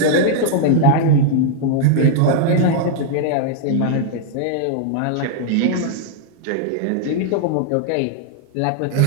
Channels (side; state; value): both; different; correlation 0.00